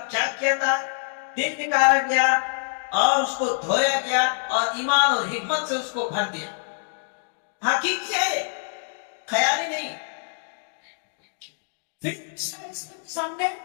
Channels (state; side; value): silent; right; digital silence